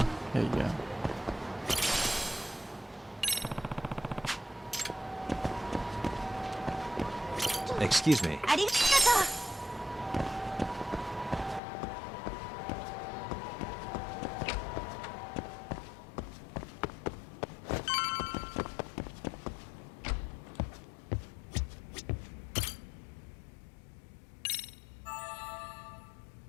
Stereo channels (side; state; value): right; drops out; at 11.6 s